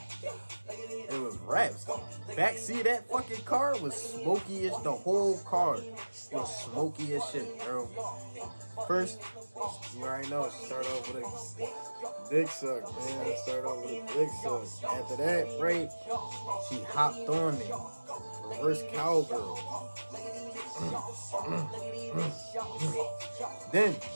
it was raps. Backseat of that fucking car was smoky as the whole car was smoky as shit, bro. First, you already know, start off with a dick suck, man. After that, right, she hopped on me. Reverse cowgirl. Then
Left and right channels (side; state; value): both; inverted; correlation -1.00